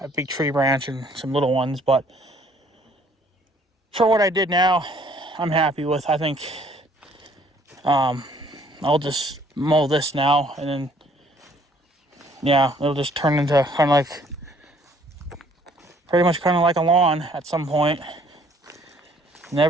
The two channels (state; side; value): normal; both; correlation 0.61